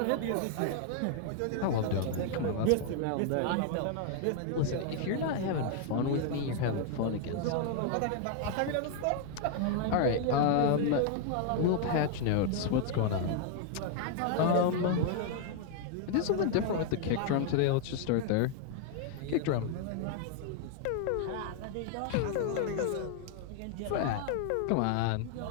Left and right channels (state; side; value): different; both; correlation 0.00